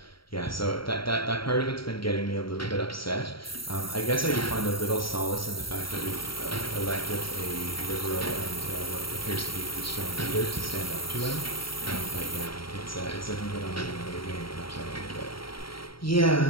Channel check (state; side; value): late; right; 0.74 ms